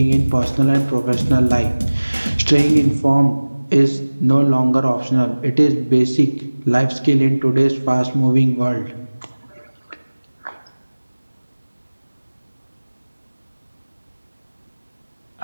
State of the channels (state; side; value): inverted; both; correlation -1.00